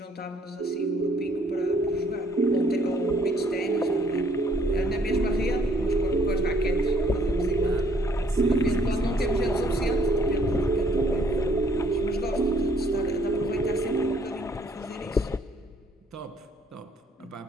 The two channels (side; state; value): both; normal; correlation 0.63